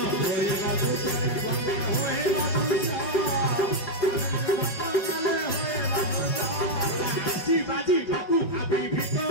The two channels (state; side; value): late; right; 5.3 ms